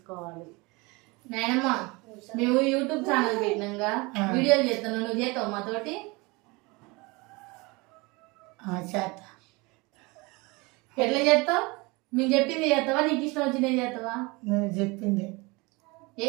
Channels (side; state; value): left; quieter; 25.6 dB